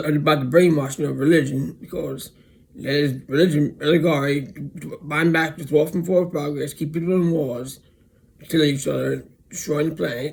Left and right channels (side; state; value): both; identical; correlation 1.00